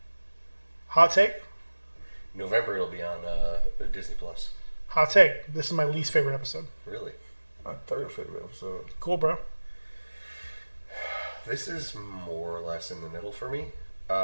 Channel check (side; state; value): both; inverted; correlation -1.00